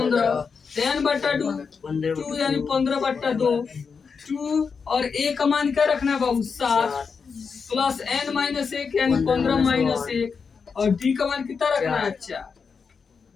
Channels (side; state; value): right; quieter; 5.6 dB